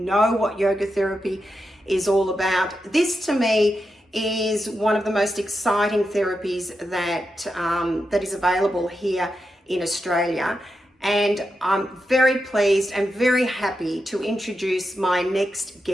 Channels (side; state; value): both; normal; correlation 0.88